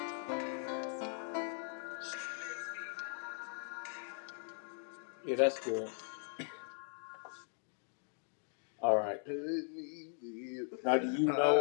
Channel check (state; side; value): silent; right; 52 dB below the other